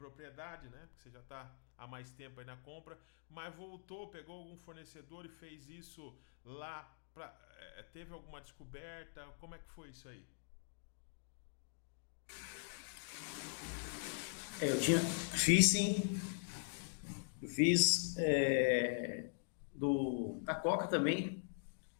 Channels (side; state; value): right; silent; digital silence